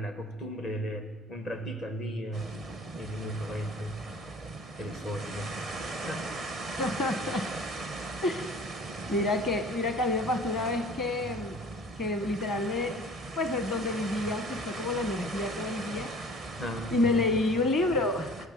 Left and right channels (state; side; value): normal; both; correlation 0.46